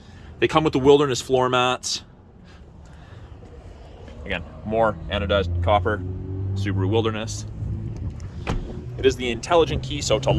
They come with the Wilderness floor mats. Again, more anodized copper, Subaru Wilderness. It is the intelligent key, so to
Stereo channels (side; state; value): both; identical; correlation 1.00